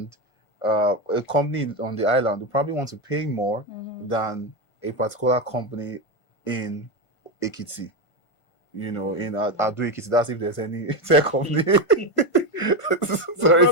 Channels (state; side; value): late; right; 1.5 ms